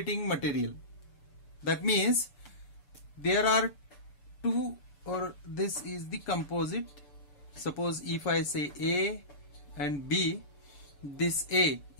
material. That means there are two, or this is the composite. Suppose if I say A and B, this A,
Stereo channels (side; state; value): right; late; 6.9 ms